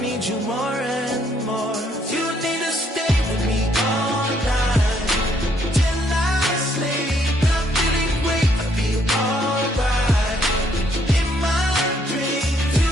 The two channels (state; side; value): normal; both; correlation 0.69